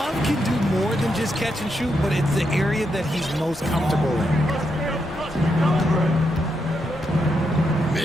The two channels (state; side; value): normal; both; correlation 0.82